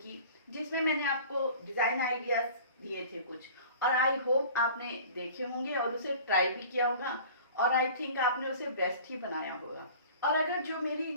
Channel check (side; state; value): both; inverted; correlation -0.44